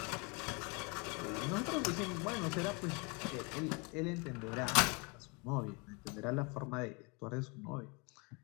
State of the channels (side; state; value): right; quieter; 31.0 dB